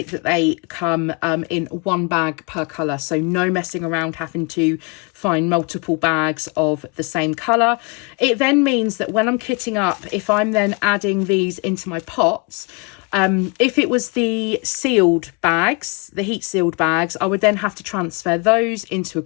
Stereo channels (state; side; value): quieter; right; 30.3 dB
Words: that they come in one bag per colour. So no messing around having to find multiple bags of the same colour. It then means that when I'm kitting up, if I'm then adding these into my pots, if it was the sealed bags, the heat sealed bags, I would then have to transfer those into a